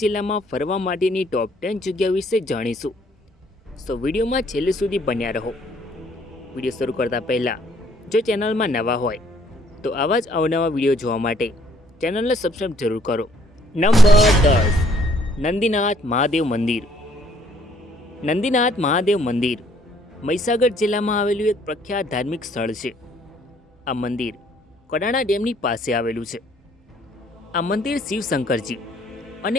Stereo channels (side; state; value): both; normal; correlation 0.63